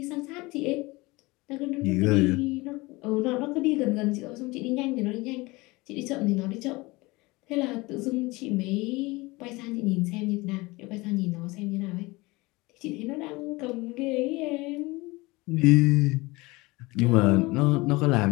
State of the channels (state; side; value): quieter; right; 22.8 dB